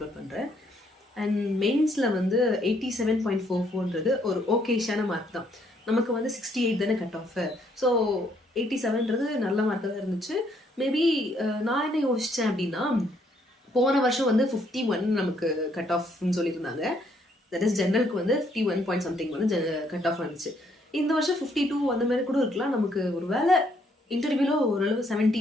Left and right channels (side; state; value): both; normal; correlation 0.69